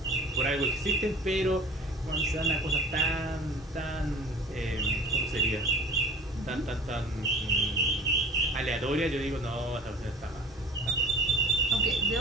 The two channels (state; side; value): normal; both; correlation 0.43